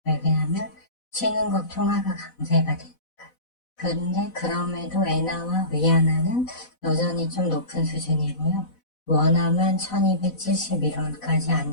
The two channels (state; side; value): late; right; 4.0 ms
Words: 왜냐하면 신흥국 통화가 강세가 되니까. 그런데 그럼에도 엔화와 위안화는 여전히 좀 높은 수준이고요. 원화만 1271원까지